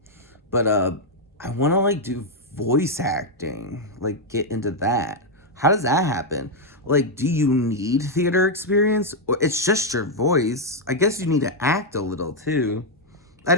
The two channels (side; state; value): both; normal; correlation -0.01